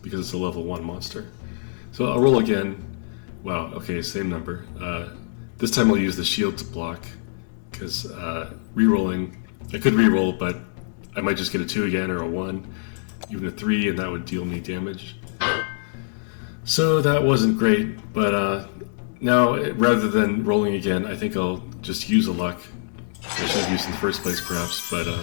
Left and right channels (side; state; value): right; silent; 62 dB below the other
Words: because it's a level 1 monster. So I'll roll again. Wow, okay, same number. This time I'll use the shield to block, because re-rolling, I could re-roll, but I might just get a 2 again, or a 1, even a 3, and that would deal me damage. So that wasn't great, but now rather than rolling again, I think I'll just use a luck. I should have used in the first place, perhaps, but